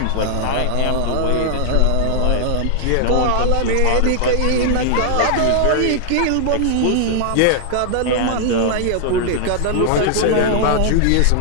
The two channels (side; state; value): both; different; correlation 0.00